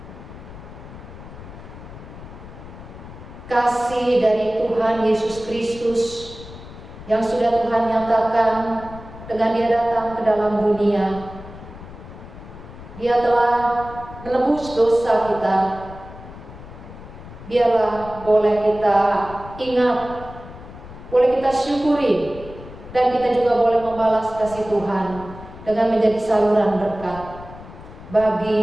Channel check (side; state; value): left; noise; rumble, 15 dB below the sound